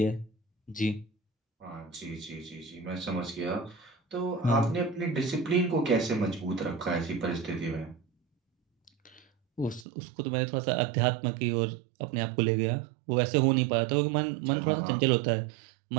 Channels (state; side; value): drops out; left; at 9.9 s